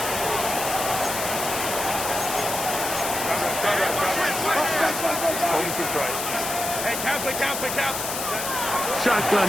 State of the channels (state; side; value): noise; left; hiss, 4 dB below the sound